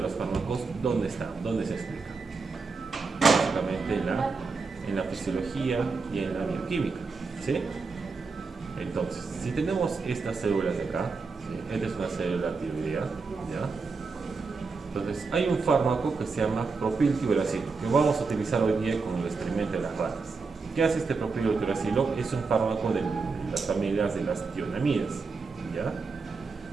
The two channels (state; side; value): quieter; left; 4.5 dB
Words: fármacos, ¿dónde está? ¿Dónde se explica? Básicamente en la fisiología y en la bioquímica, ¿sí? Entonces, si tenemos estas células de acá, ¿sí? Esta es una célula tiroidea, ¿ya? Entonces, hay un fármaco que se llama propiltiuracilo, que vamos a utilizar hoy día con el experimento de las ratas. ¿Qué hace este propiltiuracilo? Es un fármaco de las familias de las tionamidas, ¿ya?